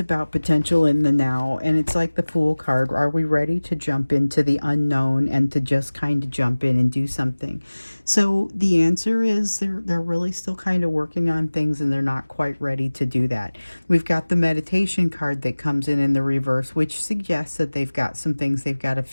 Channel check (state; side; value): inverted; both; correlation -1.00